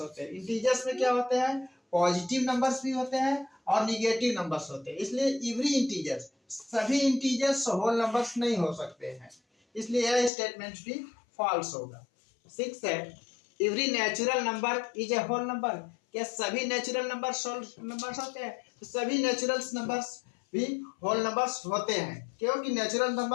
होते हैं। इंटीजर्स में क्या होते हैं? पॉजिटिव नंबर्स भी होते हैं और निगेटिव नंबर्स होते हैं। इसलिए एवरी इंटीजर्स, सभी इंटीजर्स होल नंबर्स नहीं हो सकते हैं। इसलिए यह स्टेटमेंट भी फॉल्स होगा। 6 है every natural number is a whole number. क्या सभी नेचुरल नंबर्स होल नंबर्स होते हैं? तो सभी नेचुरल नंबर्स भी होल नंबर्स होते हैं क्योंकि नेचुरल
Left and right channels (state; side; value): drops out; right; at 10.3 s